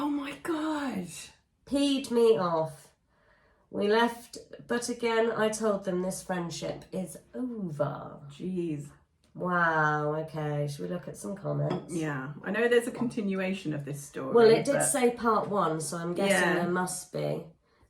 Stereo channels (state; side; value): identical; both; correlation 1.00